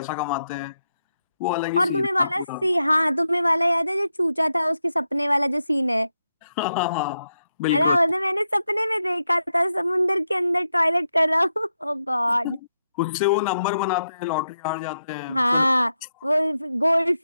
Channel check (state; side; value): inverted; both; correlation -0.84